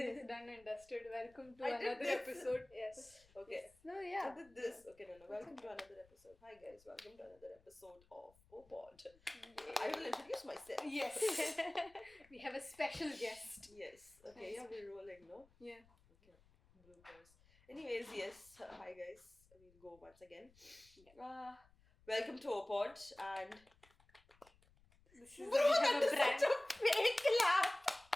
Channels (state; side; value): noise; left; rumble, 29 dB below the sound